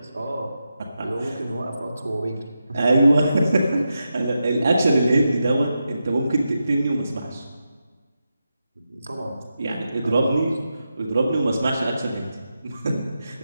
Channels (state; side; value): inverted; both; correlation -0.88